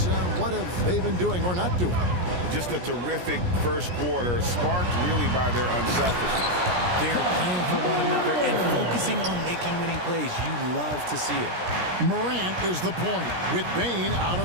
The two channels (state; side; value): late; left; 17 ms